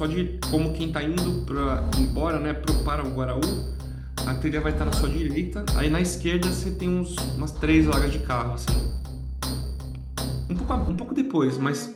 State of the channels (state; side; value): identical; both; correlation 1.00